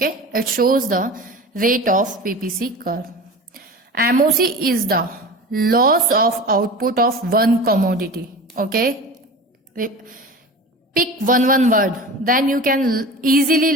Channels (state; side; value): normal; both; correlation 0.34